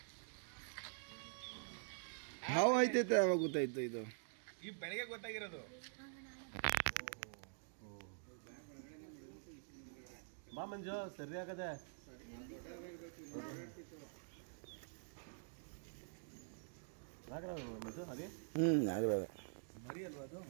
ಹಾವು ಐತೈತೆ ಯಾವಾಗ ಗೊತ್ತಾಯ್ತು ಇದು? ಈ ಬೆಳಗ್ಗೆ ಗೊತ್ತಾಗಿರೋದು. ಬಾ ಮಂಜು ಸರಿ ಆಗದೆ. ಮಂಜು ಅದೇ ಆಗಲ್ಲ ಮರಿ ಅಲ್ವಾ ಅದು?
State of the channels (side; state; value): left; silent; digital silence